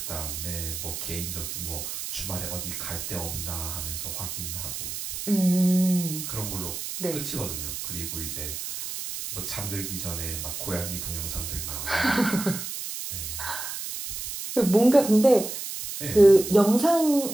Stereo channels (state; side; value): noise; right; hiss, 6 dB below the sound